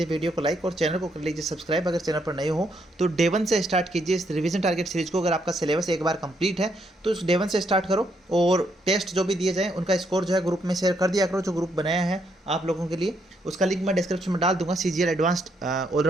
वीडियो को लाइक और चैनल को कर लीजिए सब्सक्राइब अगर चैनल पर नए हो। तो डे 1 से स्टार्ट कीजिए इस रिवीजन टारगेट सीरीज को। अगर आपका सिलेबस एक बार कंप्लीट है तो इस डे 1 से स्टार्ट करो और टेस्ट जो भी दिए जाएँ उनका स्कोर जो है ग्रुप में शेयर कर दिया करो, जो ग्रुप बनाया है आप लोगों के लिए। उसका लिंक मैं डिस्क्रिप्शन में डाल दूंगा। सीजीएल एडवांस्ड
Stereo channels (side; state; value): both; normal; correlation 0.75